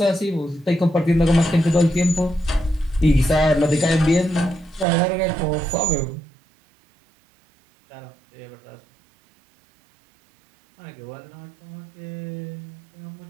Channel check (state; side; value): drops out; left; at 4.9 s